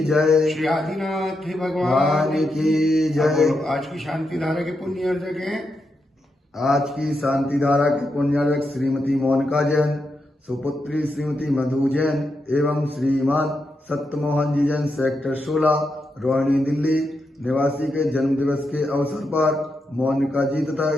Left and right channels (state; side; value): normal; both; correlation 0.85